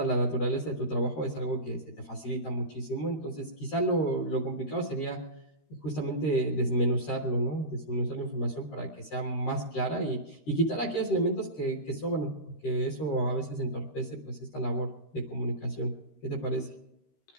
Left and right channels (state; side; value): late; right; 13 ms